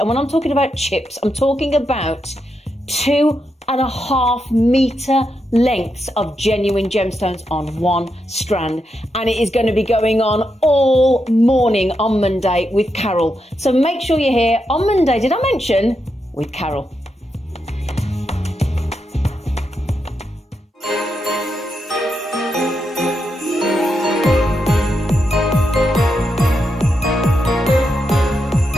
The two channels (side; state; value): both; normal; correlation 0.84